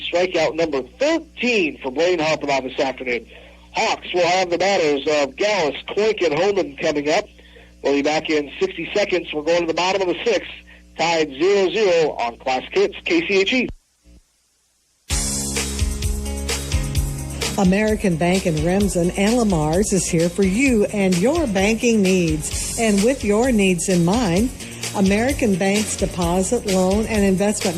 strikeout number 13 for Blaine Harpenau this afternoon. Hawks will have the batters of Gallus, Clake, and Holman coming up. We'll be back in 60 seconds. We're going to the bottom of the 6th, tied 0-0 on Classic Hits, KCHE. American Bank in Remsen and Lamar's is here for you and your banking needs. And with your needs in mind, American Bank's deposit, loan, and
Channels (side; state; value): both; identical; correlation 1.00